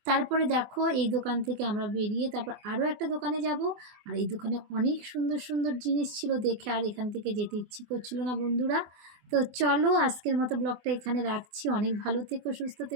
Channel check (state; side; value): late; left; 24 ms